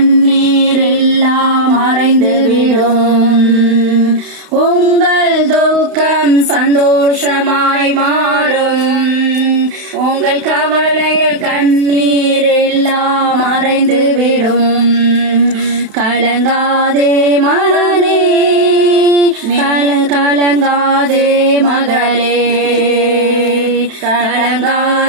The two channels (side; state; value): left; late; 32 ms